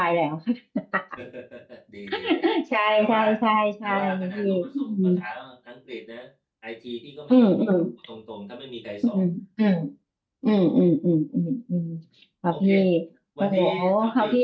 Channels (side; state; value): both; identical; correlation 1.00